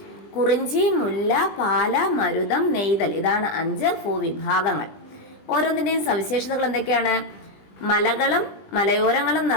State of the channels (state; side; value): late; right; 20 ms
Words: കുറിഞ്ചി, മുല്ല, പാല, മരുതം, നെയ്തൽ ഇതാണ് 5 ഭൂവിഭാഗങ്ങൾ. ഓരോന്നിൻ്റെയും സവിശേഷതകൾ എന്തൊക്കെയാണ്? മലകളും മലയോരങ്ങളും